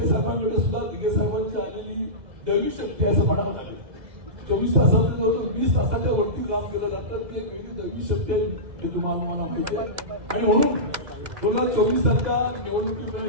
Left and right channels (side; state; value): left; late; 2.0 ms